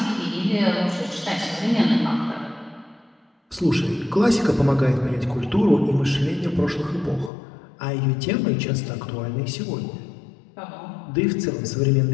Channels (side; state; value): right; drops out; at 7.3 s